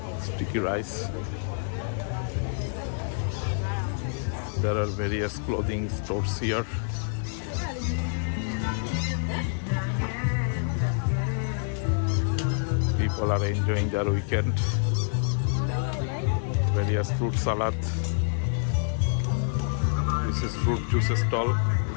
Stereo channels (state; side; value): silent; right; digital silence